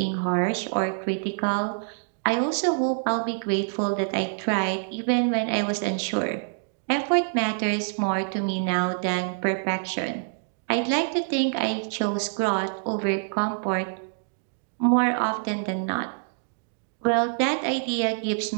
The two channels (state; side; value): silent; left; digital silence